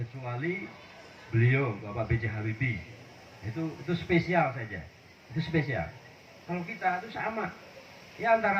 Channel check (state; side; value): identical; both; correlation 1.00